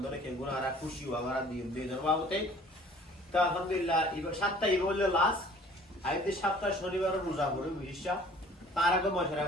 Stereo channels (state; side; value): normal; both; correlation 0.52